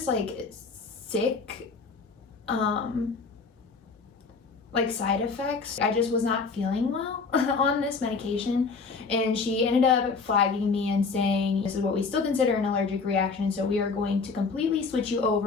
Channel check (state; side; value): quieter; right; 4.6 dB